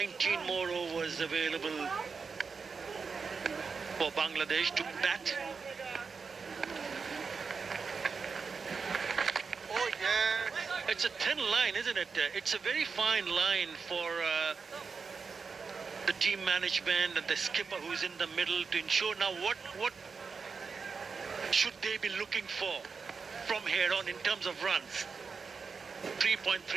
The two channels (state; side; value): quieter; left; 5.2 dB